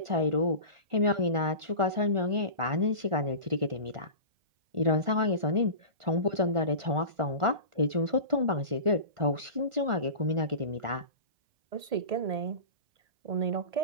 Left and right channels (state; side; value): late; left; 1.4 ms